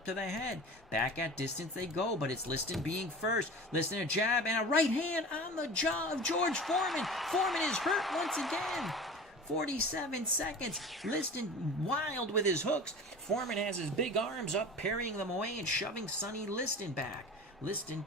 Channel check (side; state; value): both; normal; correlation 0.36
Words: to the head. Back at distance they go, but it's Liston being first. Liston a jab and a right hand on the jaw of George Foreman. Foreman is hurt once again. 47 seconds. Liston wild with his hooks. Foreman has his big arms up, parrying them away and shoving Sonny Liston back. Liston